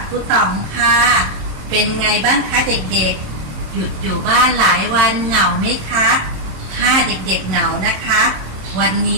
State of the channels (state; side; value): late; left; 27 ms